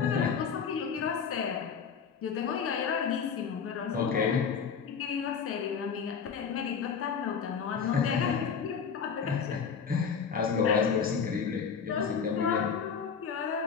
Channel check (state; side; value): quieter; right; 6.5 dB